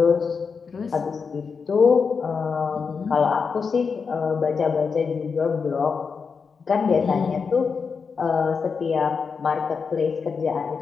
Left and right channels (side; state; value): right; quieter; 5.5 dB